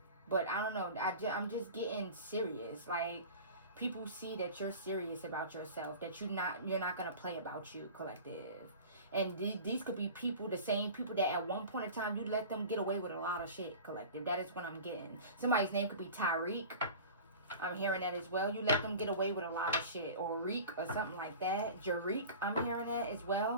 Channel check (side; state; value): both; inverted; correlation -0.37